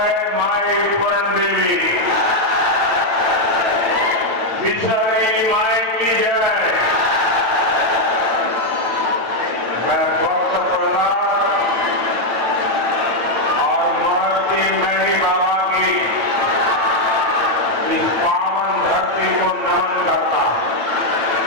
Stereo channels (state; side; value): late; left; 8.9 ms